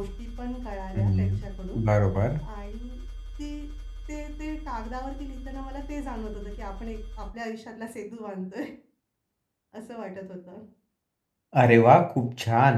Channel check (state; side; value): identical; both; correlation 1.00